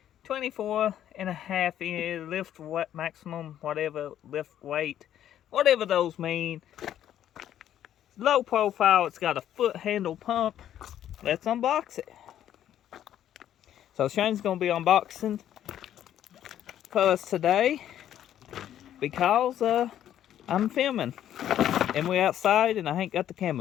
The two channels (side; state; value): right; quieter; 11.0 dB